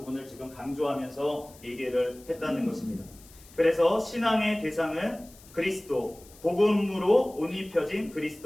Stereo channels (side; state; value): left; noise; hiss, 23 dB below the sound